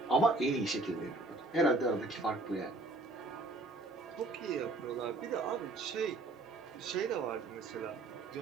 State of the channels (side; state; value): left; quieter; 3.2 dB